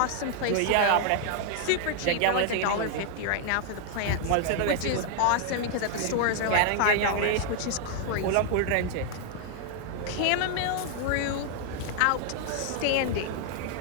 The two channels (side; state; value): both; different; correlation 0.00